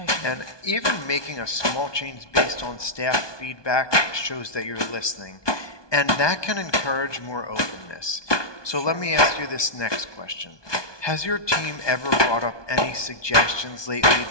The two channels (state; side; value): late; right; 1.2 ms